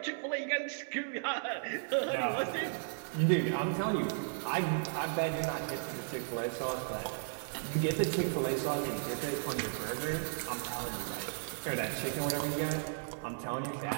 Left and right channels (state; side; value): silent; left; digital silence